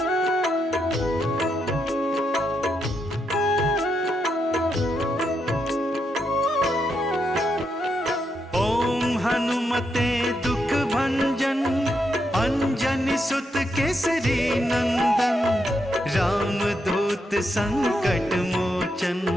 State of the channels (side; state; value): both; normal; correlation 0.81